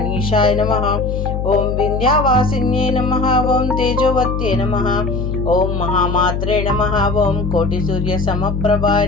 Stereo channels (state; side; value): noise; left; hum, 2 dB below the sound